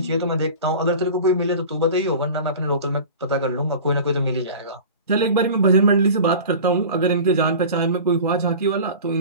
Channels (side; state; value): both; inverted; correlation -0.37